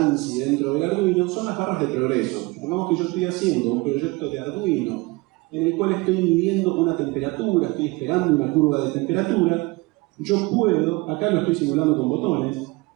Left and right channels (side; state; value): left; quieter; 24.0 dB